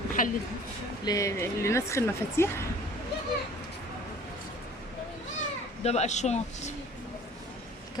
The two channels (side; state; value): both; normal; correlation 0.49